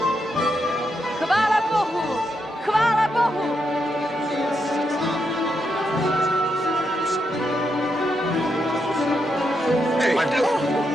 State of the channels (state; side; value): normal; both; correlation 0.82